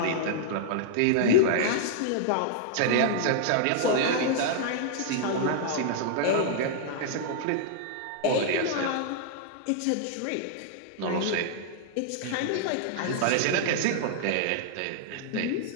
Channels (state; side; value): different; both; correlation -0.01